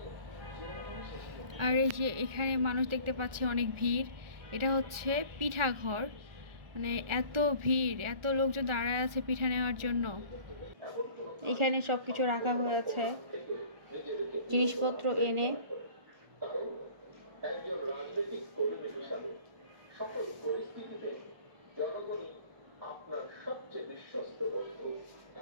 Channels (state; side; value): late; left; 1.4 ms